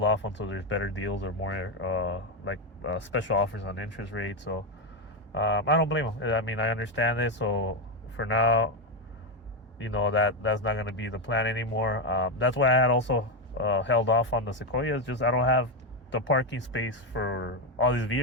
off until there's better deals or more special offers on interest rates. So I don't blame them. I mean, I understand this. So for now, that's not going to be the plan anymore. That's why I had also held off on the Sequoia. It's just I don't have the parking space for all these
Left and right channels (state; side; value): normal; both; correlation 0.08